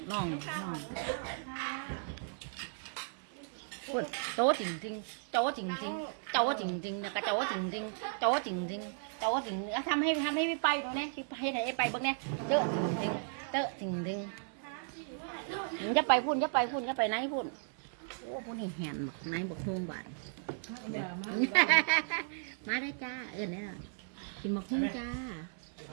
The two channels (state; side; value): silent; left; digital silence